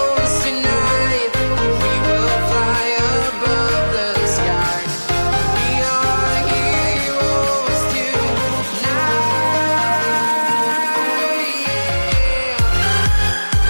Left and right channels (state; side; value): inverted; both; correlation -1.00